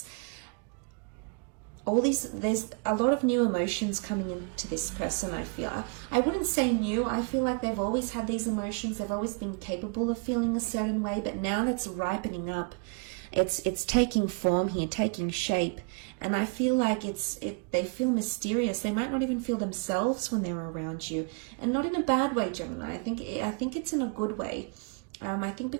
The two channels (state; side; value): quieter; left; 36.0 dB